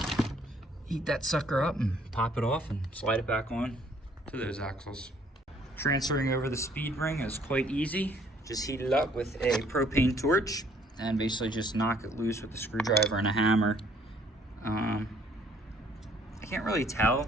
Heat that sucker up and pop it off and slide it back on to those axles. Transferring over the speed ring is quite easy. Just heat it up with a propane torch and basically just knock it loose with a screwdriver and a hammer. I can't really tell.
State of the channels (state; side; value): normal; both; correlation 0.62